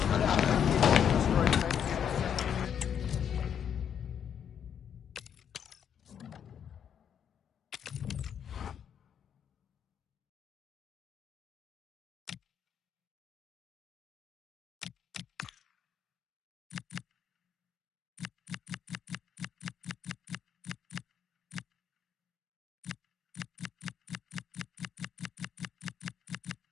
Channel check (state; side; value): quieter; right; 8.4 dB